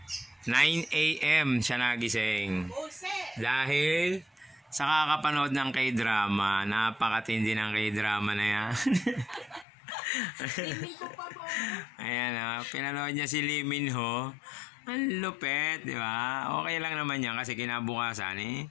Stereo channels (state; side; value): drops out; right; at 9.7 s